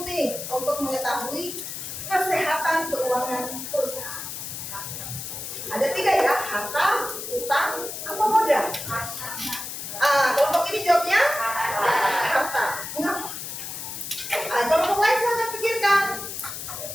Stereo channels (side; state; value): left; noise; hiss, 7 dB below the sound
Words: untuk mengetahui kesehatan keuangan perusahaan? Ada 3 ya, harta, utang, apa modal? Kelompok ini jawabnya harta. Mengapa? Kelompok lain silahkan pikirkan.